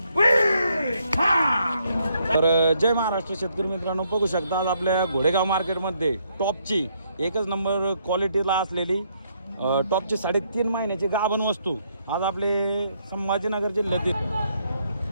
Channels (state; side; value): inverted; both; correlation -0.73